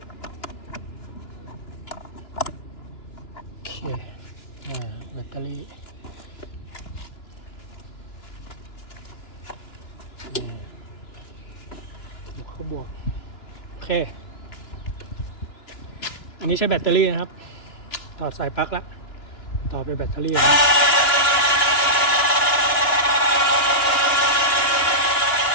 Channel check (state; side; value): late; right; 2.9 ms